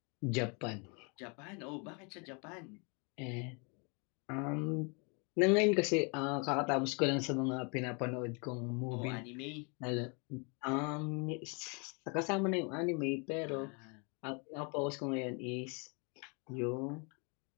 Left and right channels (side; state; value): right; quieter; 34.0 dB